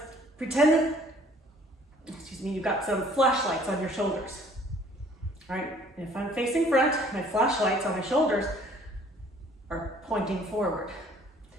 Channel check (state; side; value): normal; both; correlation 0.56